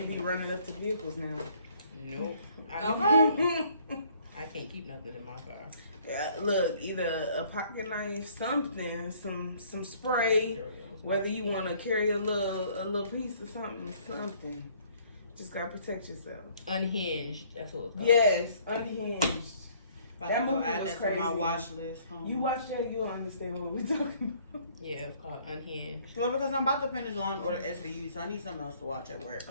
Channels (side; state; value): both; inverted; correlation -0.60